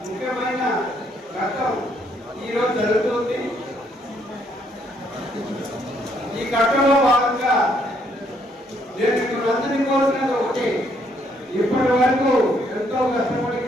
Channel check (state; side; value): normal; both; correlation 0.70